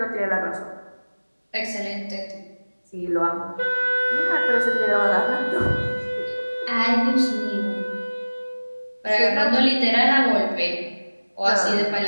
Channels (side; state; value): both; inverted; correlation -1.00